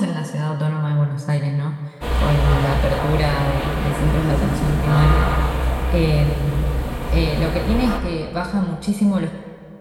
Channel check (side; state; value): both; identical; correlation 1.00